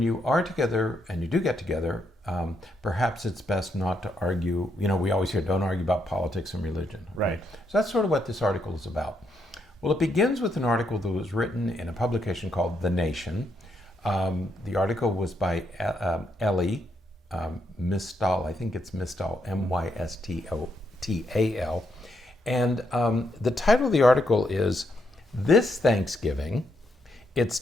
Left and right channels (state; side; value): normal; both; correlation 0.78